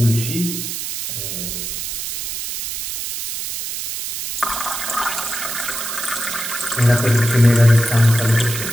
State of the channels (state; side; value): noise; right; hiss, 5 dB below the sound